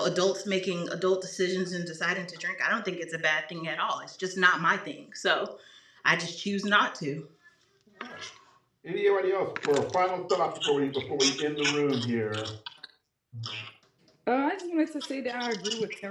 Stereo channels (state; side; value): identical; both; correlation 1.00